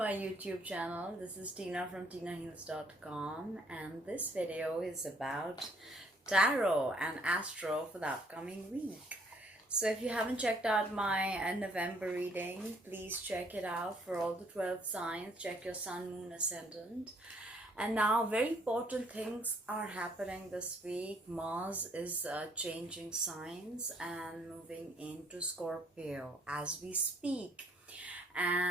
YouTube channel. This is Tina from tinaheals.com, and this video is about tarot and astro for the upcoming week. So if you haven't checked out my November reading, please check it out for all the 12 signs. Check your sun, moon, ascendant. And now very important things are happening this week. Mars is changing signs and moving into Scorpio as we speak.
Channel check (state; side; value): normal; both; correlation 0.65